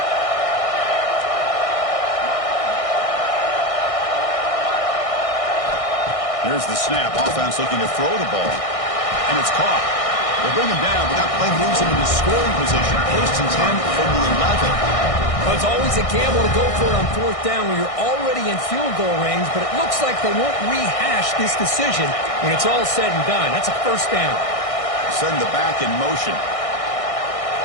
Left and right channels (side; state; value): right; late; 1.6 ms